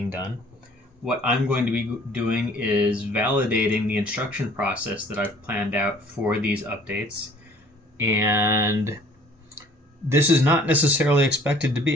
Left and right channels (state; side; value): normal; both; correlation 0.54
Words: done. What I'm going to be doing is validating the instruction process that I've planned out for these updates. And this is not necessarily expected to